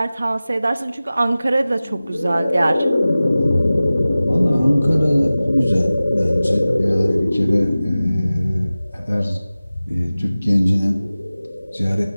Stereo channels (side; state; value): both; inverted; correlation -0.97